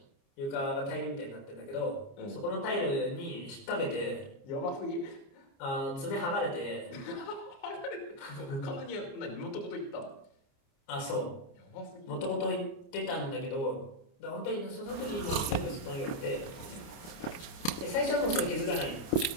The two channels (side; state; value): right; late; 29 ms